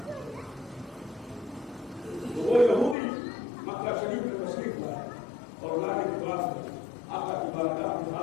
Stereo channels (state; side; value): drops out; right; at 3.0 s